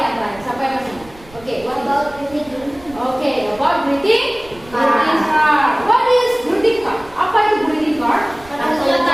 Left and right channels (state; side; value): noise; right; rumble, 22 dB below the sound